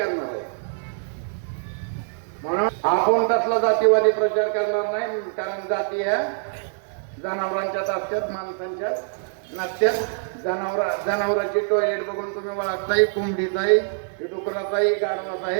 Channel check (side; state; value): left; silent; digital silence